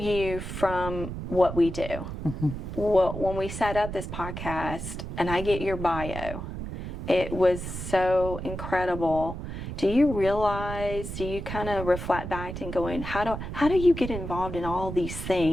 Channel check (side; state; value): right; noise; rumble, 7 dB below the sound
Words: from what we do. Well, when we set up this podcast and I get your bio, it was so incredible. Do you kind of reflect back and going, how do you get involved in all these